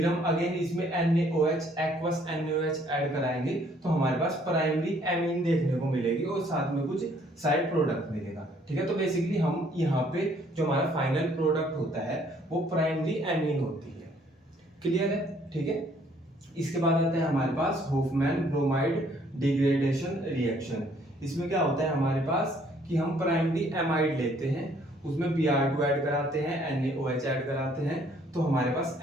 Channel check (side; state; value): both; normal; correlation 0.63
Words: हम अगेन इसमें NaOH एक्वस NaOH ऐड कराएंगे, तो हमारे पास प्राइमरी एमीन देखने को मिलेगी, और साथ में कुछ साइड प्रोडक्ट मिलेगा। ठीक है। तो बेसिकली हम यहाँ पे जो हमारा फाइनल प्रोडक्ट होता है वो प्राइमरी एमीन होती है। क्लियर है। ठीक है। इसके बाद आता है हमारे पास होफमैन ब्रोमाइड डिग्रेडेशन रिएक्शन। इसमें क्या होता है हमारे पास कि हम प्राइमरी एमाइड लेते हैं, उसमें Br2 ऐड कराते हैं, NaOH ऐड कराते हैं, तो हमारे पास